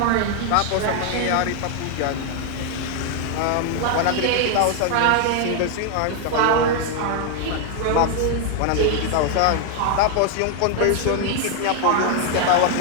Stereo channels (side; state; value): both; different; correlation 0.00